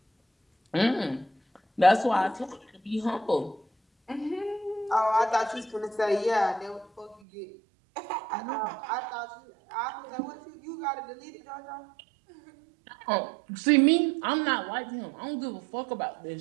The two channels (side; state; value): left; drops out; at 7.2 s